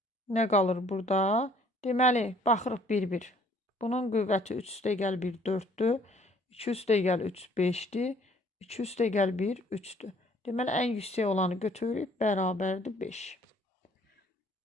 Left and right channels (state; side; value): normal; both; correlation 0.59